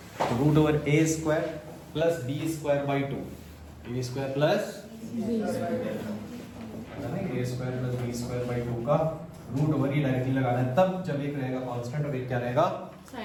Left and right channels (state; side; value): identical; both; correlation 1.00